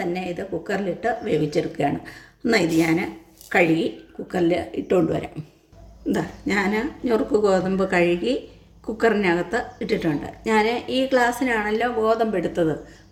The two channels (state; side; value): identical; both; correlation 1.00